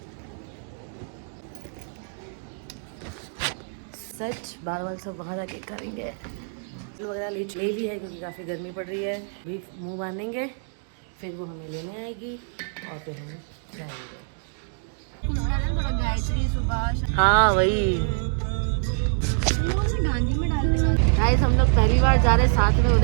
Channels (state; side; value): silent; left; digital silence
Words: सच बाल सब वहाँ जाके करेंगे। वगैरह ले ली है क्योंकि काफ़ी गर्मी पड़ रही है। अभी मुंह बांधेंगे, फिर वो हमें लेने आएगी और फिर हम जाएंगे। हाँ वही गाइस, हम लोग पहली बार जा रहे हैं साथ में